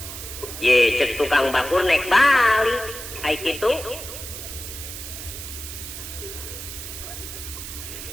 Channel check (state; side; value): noise; right; hiss, 9 dB below the sound